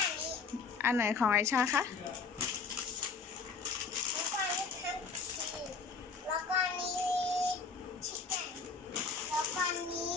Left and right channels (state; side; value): quieter; right; 5.0 dB